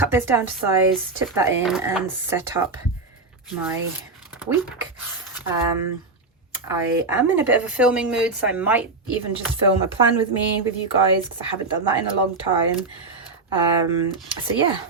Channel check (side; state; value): left; quieter; 3.7 dB